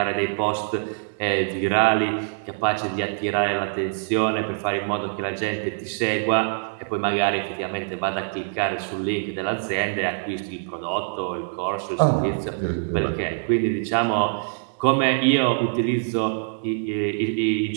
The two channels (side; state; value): left; silent; digital silence